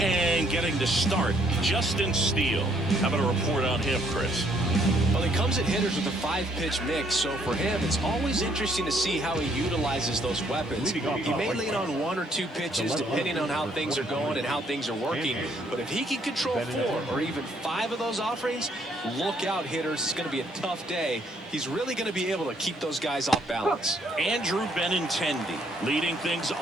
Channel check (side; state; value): both; normal; correlation 0.67